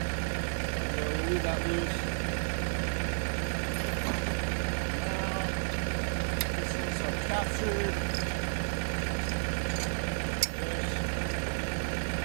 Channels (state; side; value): silent; left; digital silence